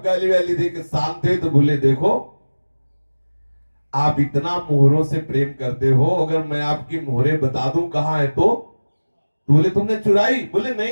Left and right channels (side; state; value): both; inverted; correlation -1.00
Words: गाली वाली दे के शांत हुए तो बोले, देखो आप इतना मोहरों से प्रेम करते हो, अगर मैं आपकी मोहरे बता दूं कहां है तो बोले तुमने चुराई। बोले